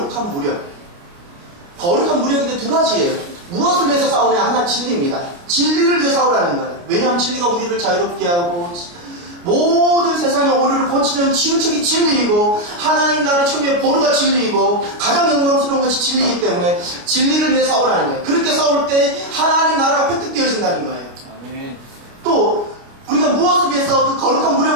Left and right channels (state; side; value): late; left; 29 ms